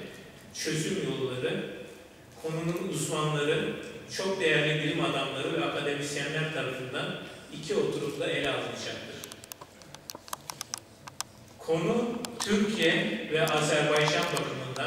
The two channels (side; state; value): both; identical; correlation 1.00